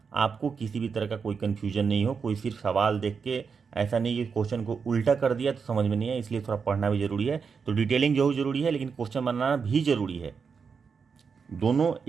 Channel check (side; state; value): left; quieter; 5.8 dB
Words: आपको किसी भी तरह का कोई कन्फ्यूजन नहीं हो। कोई सिर्फ सवाल देख के ऐसा नहीं कि क्वेश्चन को उल्टा कर दिया तो समझ में नहीं है, इसलिए थोड़ा पढ़ना भी जरूरी है। तो डिटेलिंग जो जरूरी है, लेकिन क्वेश्चन बनाना भी जरूरी है। दोनों